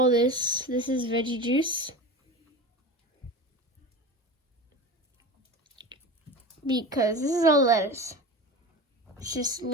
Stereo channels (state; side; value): normal; both; correlation 0.30